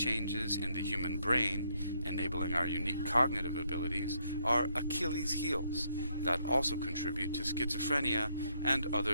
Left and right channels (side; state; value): both; inverted; correlation -0.74